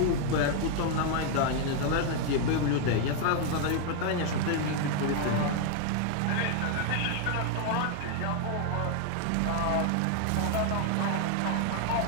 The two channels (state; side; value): different; both; correlation 0.00